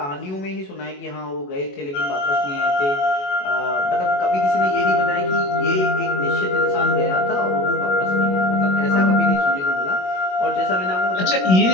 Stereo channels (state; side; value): late; right; 21 ms